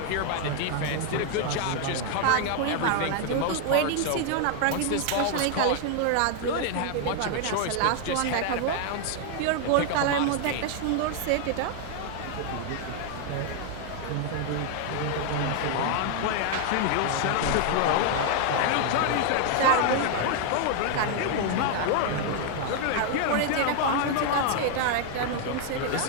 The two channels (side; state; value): both; different; correlation 0.00